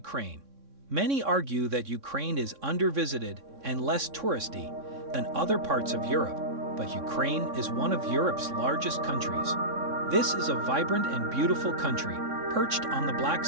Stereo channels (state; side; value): late; left; 3.6 ms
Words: Many argue that Ukraine is under-visited and less touristy than other parts of Europe, but Ukraine is one of Europe's largest countries. This is a vibrant and beautiful country, perched on the Black